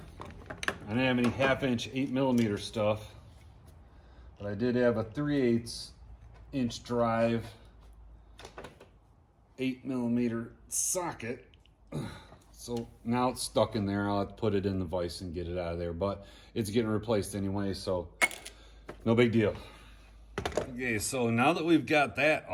I didn't have any 1/2-inch 8mm stuff, but I did have a 3/8-inch drive 8mm socket. So now it's stuck in there. I'll have to put it in the vise and get it out of there, but it's getting replaced anyway, so no big deal. Okay, so now that we've got that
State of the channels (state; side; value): identical; both; correlation 1.00